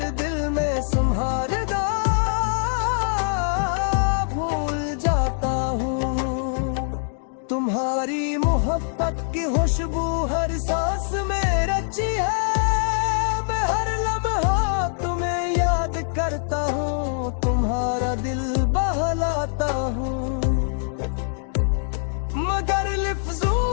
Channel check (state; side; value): silent; right; digital silence